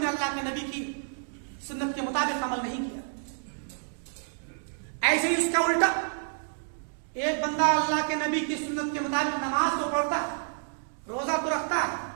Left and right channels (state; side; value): silent; left; digital silence